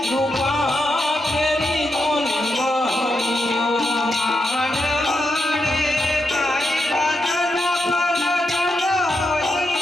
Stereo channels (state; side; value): normal; both; correlation 0.84